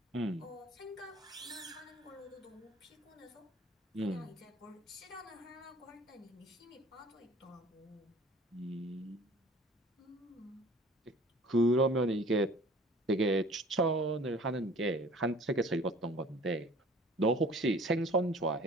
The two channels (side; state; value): both; normal; correlation 0.49